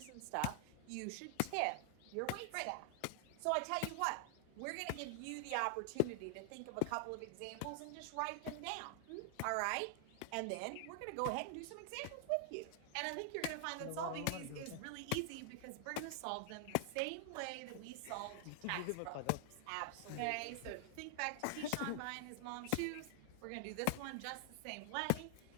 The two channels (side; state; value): both; different; correlation 0.00